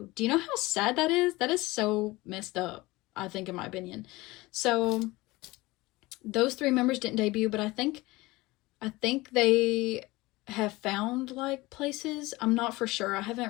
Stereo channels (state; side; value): quieter; right; 20.9 dB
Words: Do you know how sad that is? That is so messed up, I think, in my opinion. So those 3 members didn't debut, but I think they have found like places. I'm not for sure. I